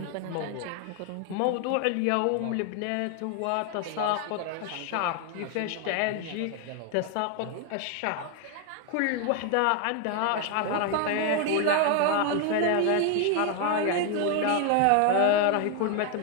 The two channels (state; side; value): different; both; correlation 0.01